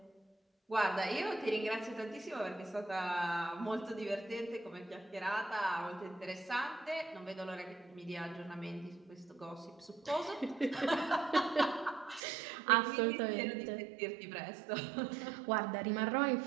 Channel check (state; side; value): drops out; left; at 12.2 s